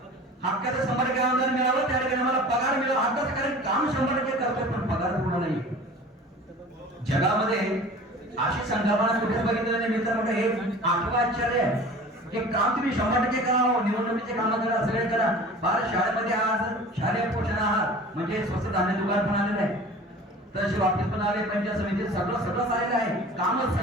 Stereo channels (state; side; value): normal; both; correlation 0.41